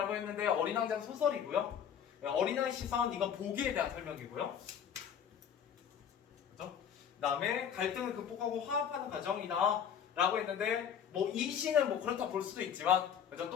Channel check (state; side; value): quieter; right; 8.2 dB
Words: 했는데 어린 왕자는 소설이고요. 어린아이 시선 이건 보기에 대한 설명이고요. 그죠? 그다음에 갈등을 극복하고 화합하는 과정이다 라고 했는데 뭐 이 시는 뭐 그렇다 볼 수도 있지만 그죠?